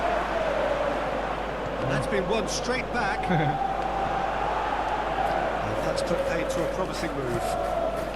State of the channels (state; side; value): identical; both; correlation 1.00